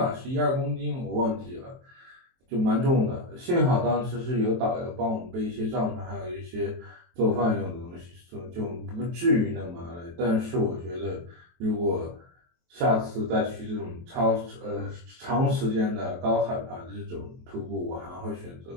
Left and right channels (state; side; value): late; left; 23 ms